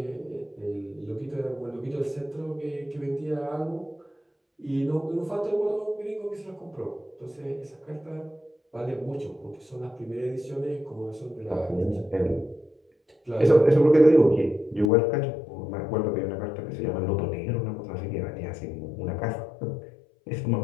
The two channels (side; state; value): right; drops out; at 14.9 s